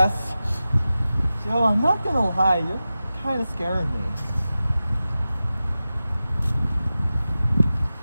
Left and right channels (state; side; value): inverted; both; correlation -0.94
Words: Joe, I'm not gonna lie, you're kind of scaring me.